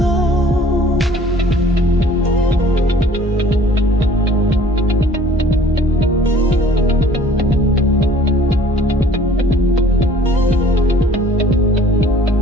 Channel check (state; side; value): normal; both; correlation 0.53